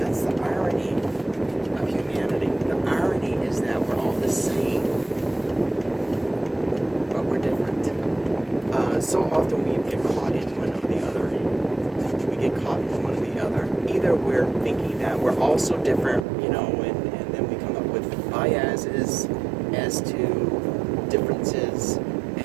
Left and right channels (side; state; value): left; drops out; at 16.2 s